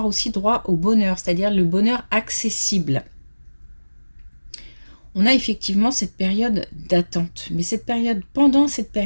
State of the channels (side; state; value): both; inverted; correlation -1.00